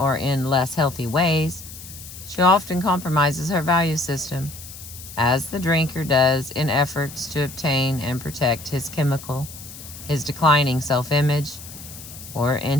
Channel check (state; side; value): noise; left; hiss, 14 dB below the sound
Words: in less healthy ways, she often compromises her value system, as the drinker does in efforts to obtain and protect his declining self-image, or in